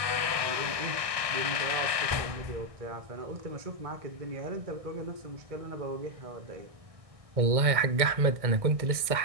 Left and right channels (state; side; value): late; left; 1.6 ms